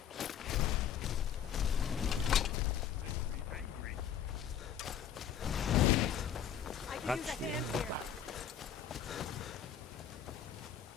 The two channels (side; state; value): right; quieter; 8.8 dB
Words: That's the end of that.